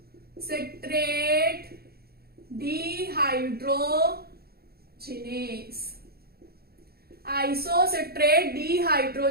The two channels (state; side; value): late; left; 0.45 ms